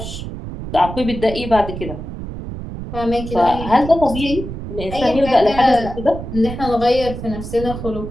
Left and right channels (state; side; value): noise; right; rumble, 8 dB below the sound